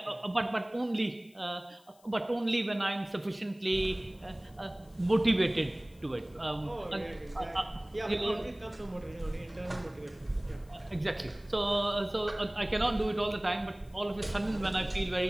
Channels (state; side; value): noise; left; hiss, 29 dB below the sound